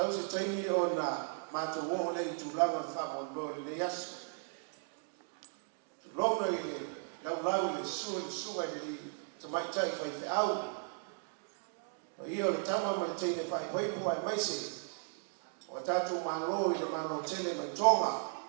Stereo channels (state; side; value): silent; left; 54 dB below the other